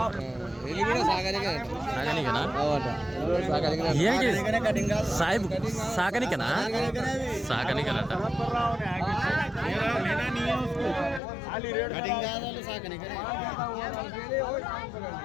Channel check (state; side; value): drops out; right; at 11.2 s